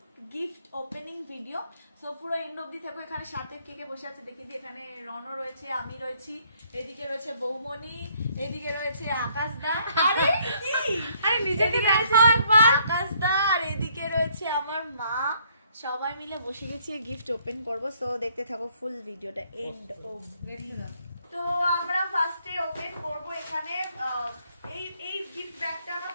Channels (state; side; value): inverted; both; correlation -0.66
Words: gift opening video. So পুরো এন্ড অবধি থাকো। এখানে সাথে কে কে বসে আছে দেখি দিই। এখানে রনো রয়েছে, আমি রয়েছি, এদিকে রয়েছে বৌমনি, এদিকে রয়েছে আকাশদা। আরে কি, আরে নিজেকে দেখো একবার, আকাশদা। আর এদিকে রয়েছে আমার মা। সবাই মিলে বসে গেছি গিফট ওপেন করব। সো দেখতে থাকো ফুল ভিডিওটা এন্ড অবধি। তো আমরা ফার্স্টে ওপেন করব এখানে এই গিফট ব্যাগটা আমার